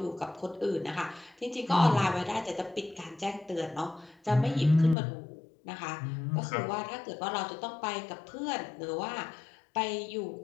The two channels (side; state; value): right; drops out; at 5.0 s